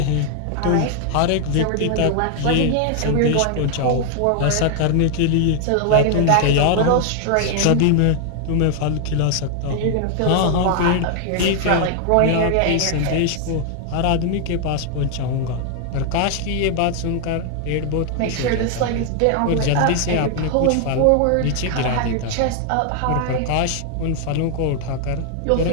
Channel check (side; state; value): both; different; correlation 0.00